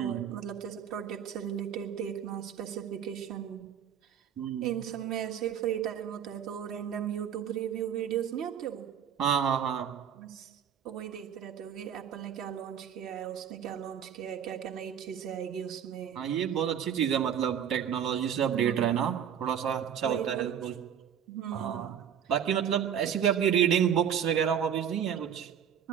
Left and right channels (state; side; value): quieter; left; 8.7 dB